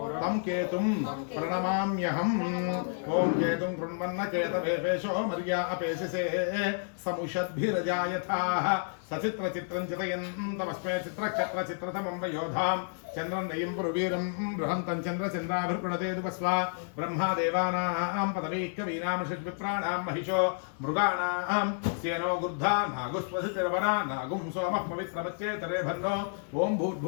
तं केतुं प्रणमाम्यहम् ओं केतुं कृण्वन्न केतवेपेशो मर्या अपेशसे समुषद्भिरजायथाः సచిత్ర చిత్రం చితయంతమస్మే చిత్రక్షత్ర చిత్రతమం వయోధాం చంద్రం నయం పురువీరం బృహంతం చంద్ర చంద్రాభిర్గృణతే దుపస్వ బ్రహ్మా దేవానాం పదవీకవీనాం షడ్విప్రాణాం మహిషో మృగాణాం సేనో గుర్ధా నాగుస్వసితిర్వరా నాగుం సోమః పవిత్రమచ్చేతరే భన్నో ఓం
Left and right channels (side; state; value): right; silent; digital silence